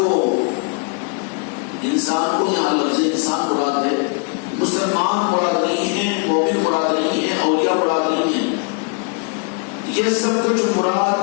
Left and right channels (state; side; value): quieter; right; 37.1 dB